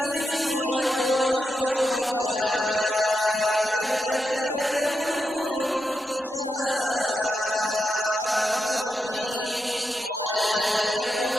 ويقول أين شركائي الذين كنتم تشاقون فيهم قال الذين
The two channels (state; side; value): normal; both; correlation 0.86